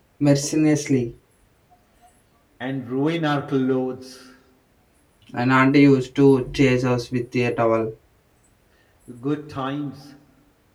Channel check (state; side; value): identical; both; correlation 1.00